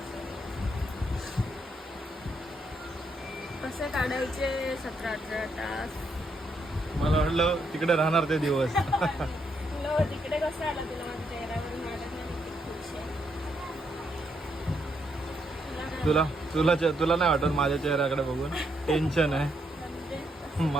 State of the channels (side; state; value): both; normal; correlation 0.77